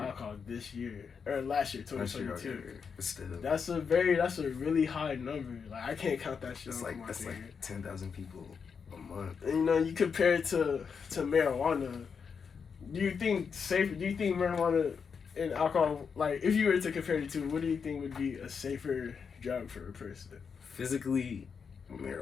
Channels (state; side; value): quieter; right; 6.1 dB